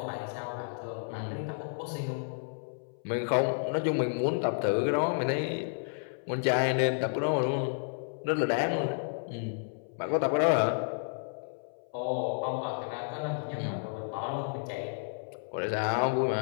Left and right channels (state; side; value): silent; right; 57 dB below the other